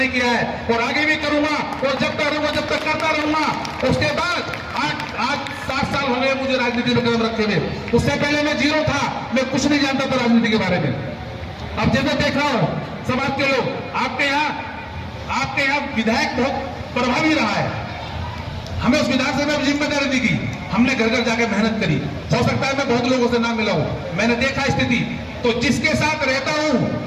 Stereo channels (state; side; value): identical; both; correlation 1.00